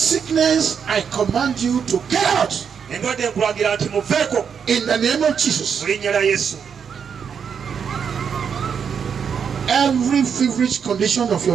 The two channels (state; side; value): quieter; left; 7.0 dB